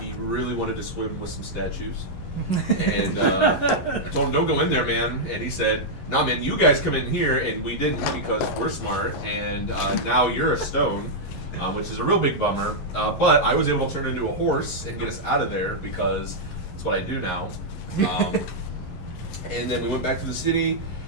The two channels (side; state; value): right; late; 11 ms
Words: really wanted to swim with some statues. And I told him, don't go in there, man. And he said, nah, man, you guys come in here. And we didn't because we're smart. And now you're a stone, which is a real big bummer. But I was able to turn into a horse and get us out of there because that's what I do now. And then we went back to the city.